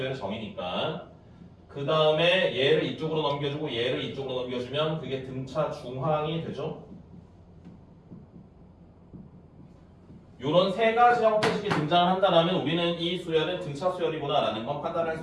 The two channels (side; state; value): both; identical; correlation 1.00